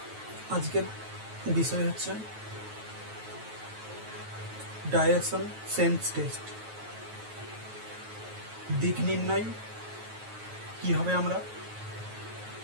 আজকের বিষয় হচ্ছে ডাইরেকশন সেন্স টেস্ট। দিক নির্ণয় কীভাবে আমরা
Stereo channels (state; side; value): late; left; 9.2 ms